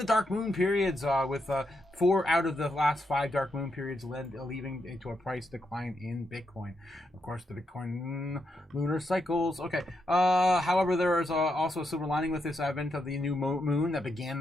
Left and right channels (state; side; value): normal; both; correlation 0.82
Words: dark moon periods, with 4 out of the last 5 dark moon periods leading to a price decline in Bitcoin. Of course, the Bitcoin lunar cycles. Okay. However, there is also a silver lining with this advent of the new moon that began